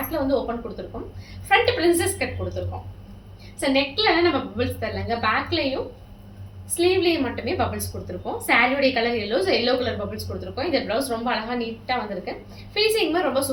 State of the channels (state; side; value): identical; both; correlation 1.00